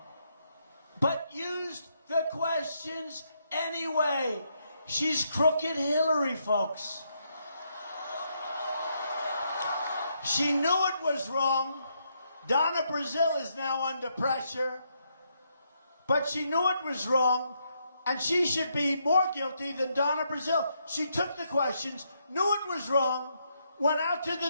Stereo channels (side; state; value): both; inverted; correlation -0.77